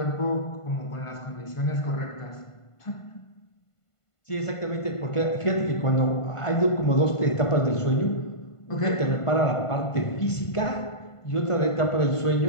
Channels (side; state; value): right; late; 1.5 ms